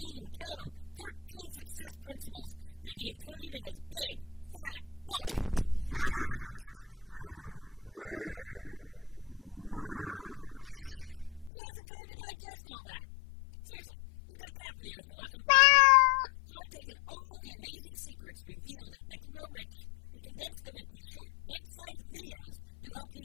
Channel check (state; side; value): drops out; right; at 11.5 s